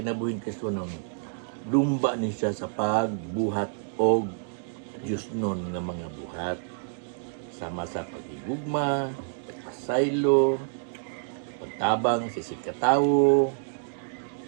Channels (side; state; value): left; silent; digital silence